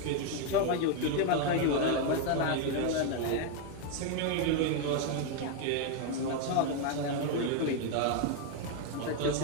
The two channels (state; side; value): different; both; correlation 0.01